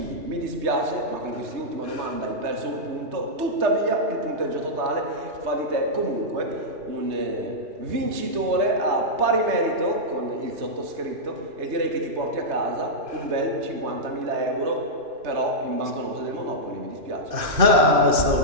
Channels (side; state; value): left; late; 2.5 ms